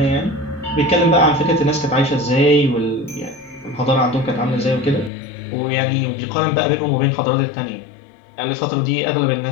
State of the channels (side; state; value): right; drops out; at 5.1 s